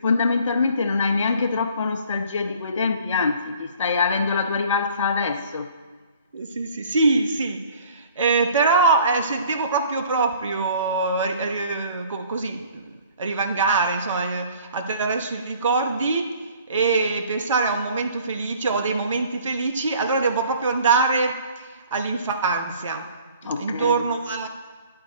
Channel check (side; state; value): both; inverted; correlation -0.53